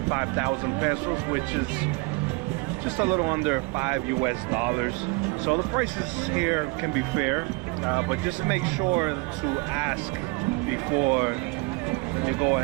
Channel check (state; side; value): quieter; left; 27.8 dB